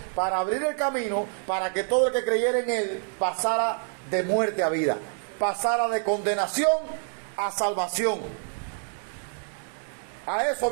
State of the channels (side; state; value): left; silent; 60 dB below the other